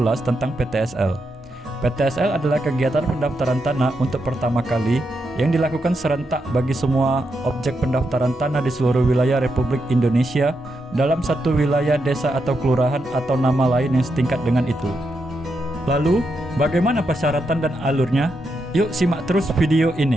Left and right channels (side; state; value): both; normal; correlation 0.83